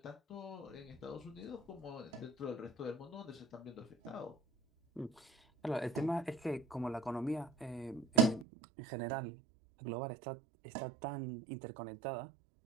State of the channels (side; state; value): left; drops out; at 8.5 s